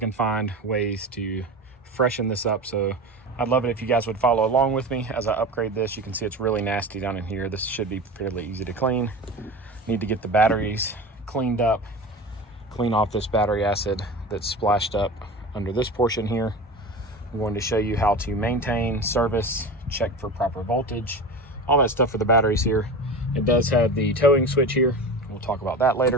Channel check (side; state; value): both; normal; correlation 0.30